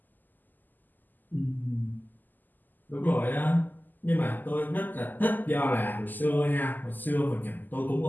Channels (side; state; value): right; late; 0.087 ms